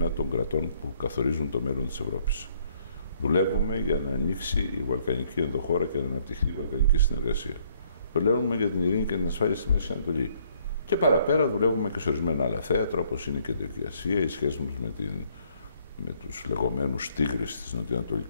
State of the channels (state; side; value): inverted; both; correlation -0.66